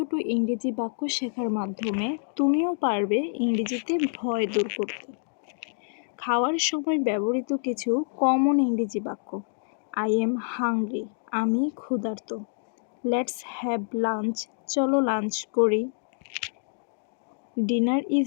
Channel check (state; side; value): silent; right; digital silence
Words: ইংরেজি বাক্য শেখার মাধ্যমে তুমিও পারবে ইংরেজিতে ভয় দূর করতে। খাওয়ার সময় ব্যবহৃত কিছু কমন ইংরেজি বাক্য: আই এম হাংরি, আমি ক্ষুধার্ত। লেটস হ্যাভ লাঞ্চ, চলো লাঞ্চ করি। ডিনার